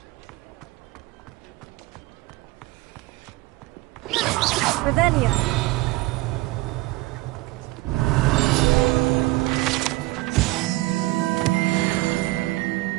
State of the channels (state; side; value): quieter; left; 20.1 dB